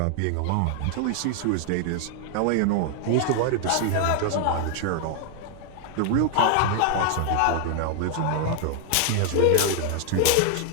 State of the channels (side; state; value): both; different; correlation 0.00